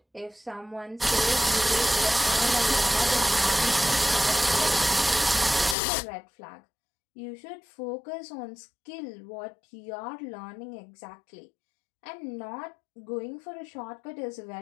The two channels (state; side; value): drops out; right; at 5.8 s